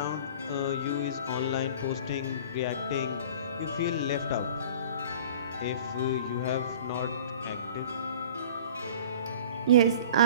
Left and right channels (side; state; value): both; inverted; correlation -0.43